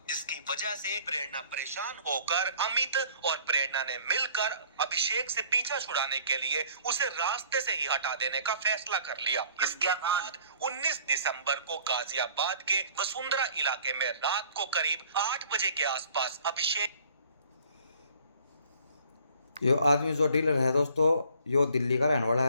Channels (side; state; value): both; inverted; correlation -0.54